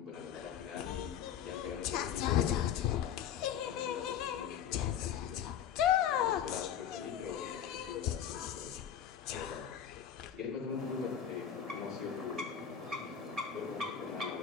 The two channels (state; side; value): quieter; right; 8.8 dB